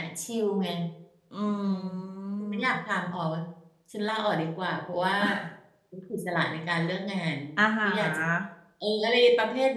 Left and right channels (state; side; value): identical; both; correlation 1.00